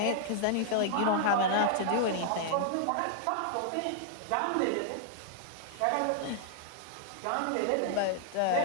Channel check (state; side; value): different; both; correlation -0.01